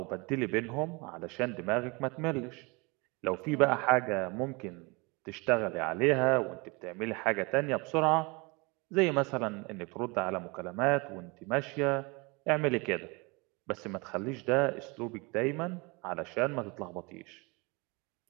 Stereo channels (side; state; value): left; quieter; 28.0 dB